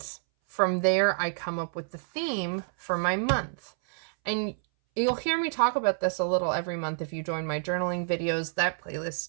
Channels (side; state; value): left; silent; 59 dB below the other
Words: from there, I come up with the theme for my month. And you'll hear me talk about this a little every month if you join my journaling videos. That